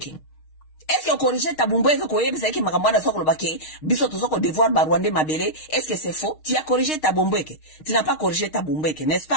Est-ce qu'on corrige Tabumbeke qu'on y est que Makamwana sort le baquet, bisoto sort devoir Barwande Mabele? Est-ce que c'est faux? Tu as corrigé Tabumbeke. Tu n'as pas corrigé Tabumbeke, n'est-ce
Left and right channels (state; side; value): late; right; 6.4 ms